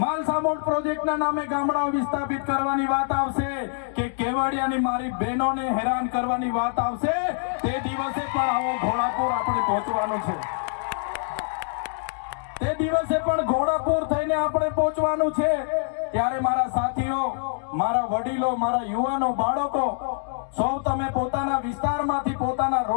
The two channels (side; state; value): right; silent; digital silence